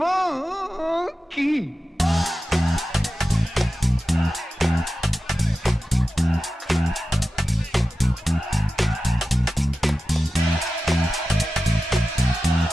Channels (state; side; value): normal; both; correlation 0.93